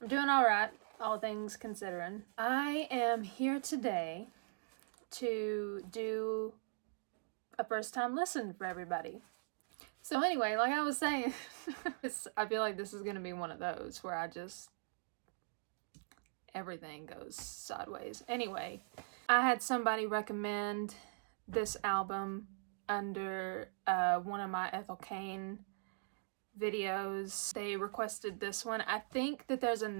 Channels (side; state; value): left; silent; digital silence